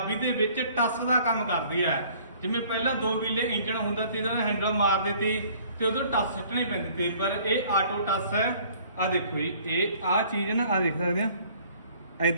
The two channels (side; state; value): both; inverted; correlation -0.55